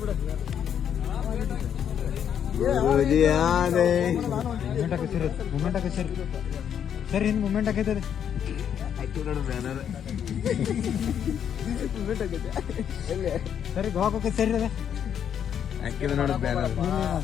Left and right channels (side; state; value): right; quieter; 8.8 dB